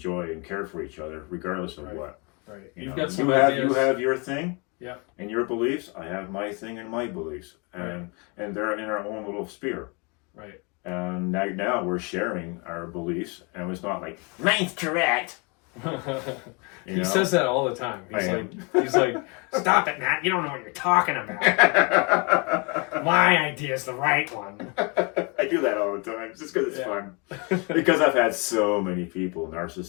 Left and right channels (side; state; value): right; quieter; 31.5 dB